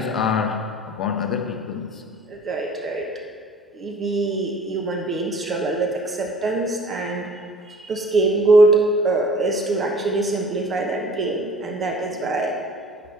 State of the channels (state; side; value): normal; both; correlation 0.47